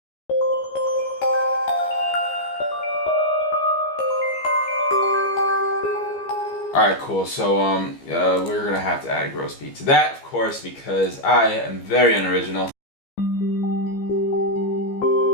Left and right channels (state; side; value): late; right; 15 ms